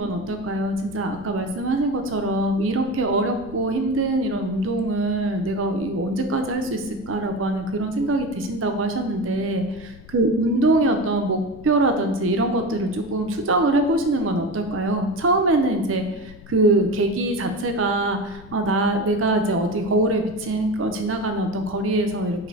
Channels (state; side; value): noise; left; rumble, 19 dB below the sound